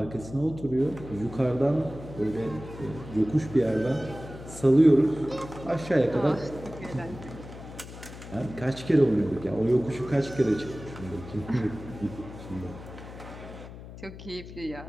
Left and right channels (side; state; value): left; noise; hum, 14 dB below the sound